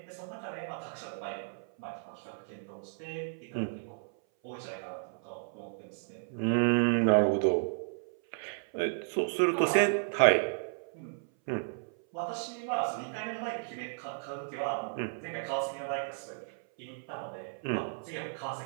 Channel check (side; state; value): left; silent; 55 dB below the other